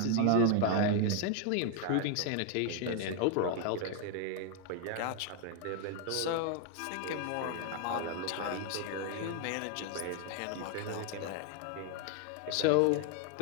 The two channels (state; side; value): different; both; correlation 0.01